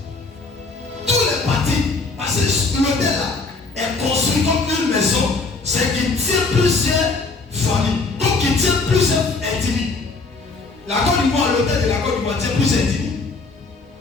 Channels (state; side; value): quieter; right; 3.9 dB